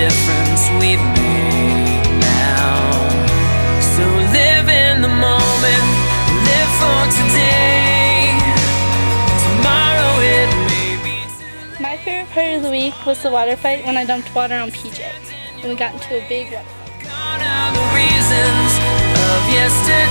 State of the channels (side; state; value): both; inverted; correlation -1.00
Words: we've made now? So live in the moment, live for today. Tomorrow it may be too late. My favorite part of the week was the water fight when I dumped water on PJ and we got into a big water fight. Gone are the reasons of